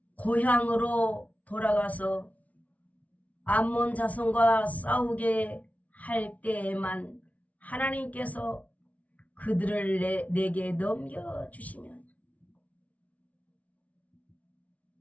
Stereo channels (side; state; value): right; late; 0.068 ms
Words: 고향으로 돌아가서 암몬 자손과 싸우게 할 때에만 하나님께서 그들을 내게 넘겨주시면